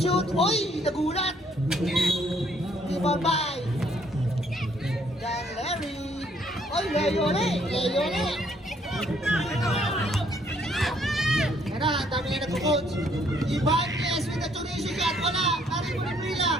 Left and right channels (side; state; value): both; normal; correlation 0.66